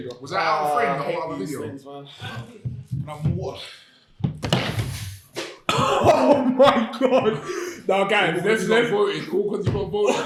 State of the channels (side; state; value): both; identical; correlation 1.00